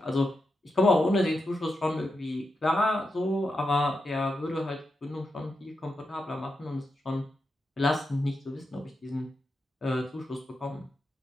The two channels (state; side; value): normal; both; correlation 0.87